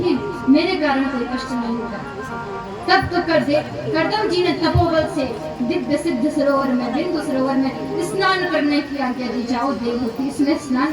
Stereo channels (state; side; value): identical; both; correlation 1.00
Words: मेरे कारण कोई कष्ट नहीं होगा। तब तो करदम जी ने तपोबल से दिव्य सिद्ध सरोवर में, बिंदु सरोवर में स्नान करने की आज्ञा दी। जाओ देवहूति, इसमें